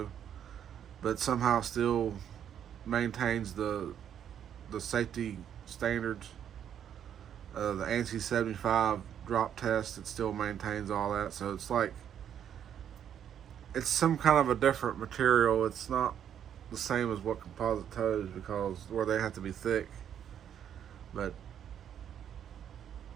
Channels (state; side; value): quieter; left; 9.3 dB